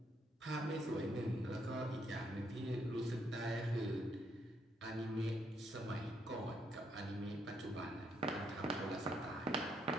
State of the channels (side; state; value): both; normal; correlation 0.74